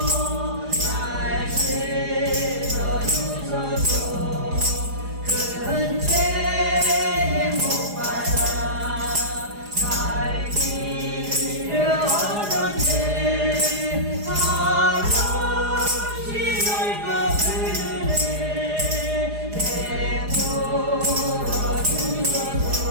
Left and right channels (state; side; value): late; left; 4.8 ms